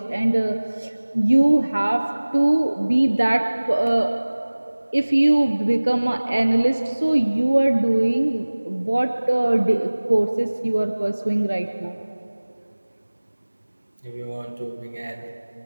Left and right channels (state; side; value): inverted; both; correlation -1.00